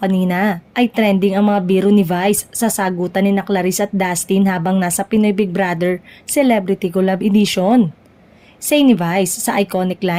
ay trending ang mga biro ni Vice sa sagutan ni na Clarice at Dustin habang nasa Pinoy Big Brother Celebrity Collab Edition. Say ni Vice sa iconic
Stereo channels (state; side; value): identical; both; correlation 1.00